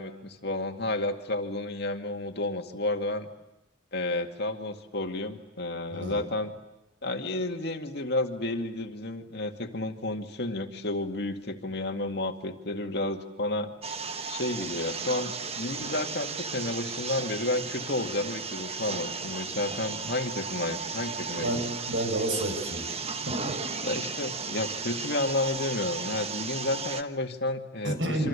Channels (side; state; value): both; normal; correlation -0.01